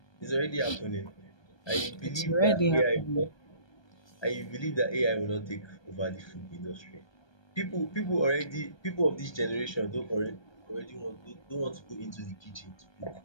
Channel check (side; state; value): right; late; 1.2 ms